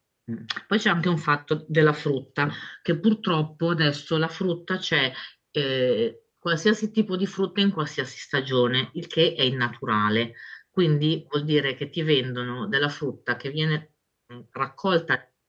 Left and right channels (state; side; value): identical; both; correlation 1.00